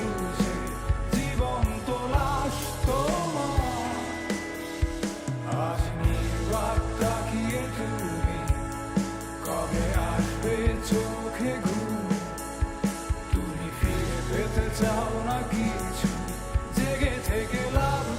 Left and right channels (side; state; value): both; identical; correlation 1.00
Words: জীবন্ত লাশ তোমার। আজ নির্বাক তাকিয়ে তুমি, কবে আসবে চোখে ঘুম? তুমি ফিরে পেতে চাও না কিছু, জেগে থেকে লাভ